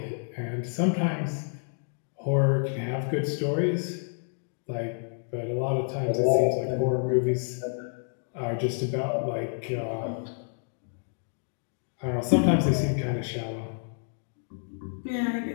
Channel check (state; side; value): silent; right; digital silence